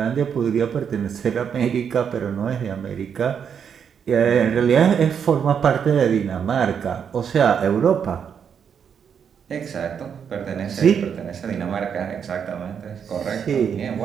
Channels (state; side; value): quieter; left; 7.4 dB